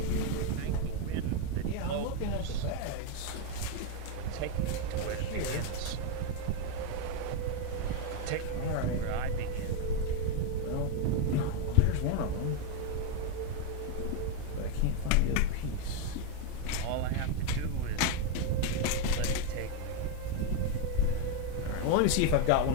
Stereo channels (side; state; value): both; different; correlation 0.02